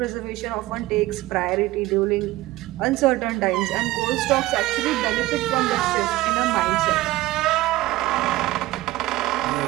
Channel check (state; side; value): quieter; left; 17.6 dB